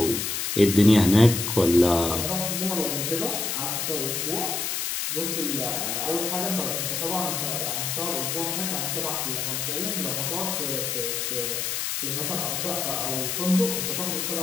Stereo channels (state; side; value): noise; left; hiss, 1 dB below the sound